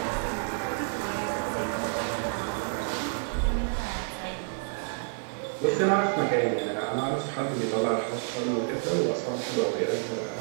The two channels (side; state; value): left; silent; 59 dB below the other